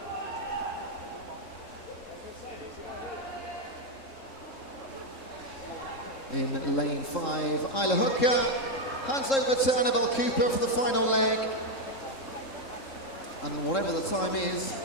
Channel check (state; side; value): late; right; 3.7 ms